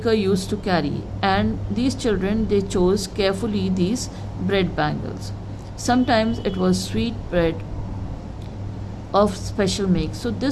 used to carry, and these children, they chose carefully these bread bangles. Sometimes it was sweet bread of special make. So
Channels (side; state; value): both; identical; correlation 1.00